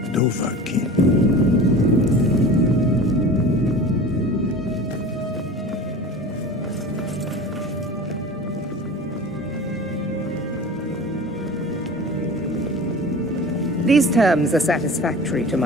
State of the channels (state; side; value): normal; both; correlation 0.37